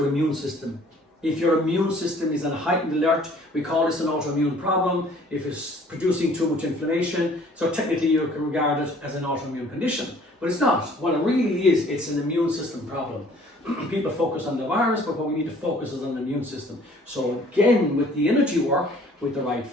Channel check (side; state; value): both; normal; correlation 0.55